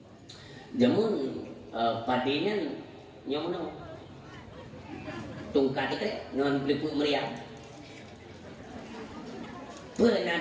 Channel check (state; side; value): identical; both; correlation 1.00